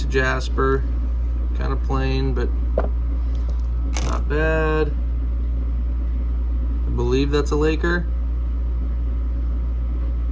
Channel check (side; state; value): both; identical; correlation 1.00